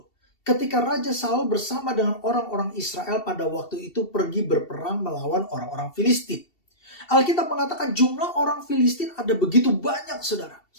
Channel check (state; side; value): late; right; 2.7 ms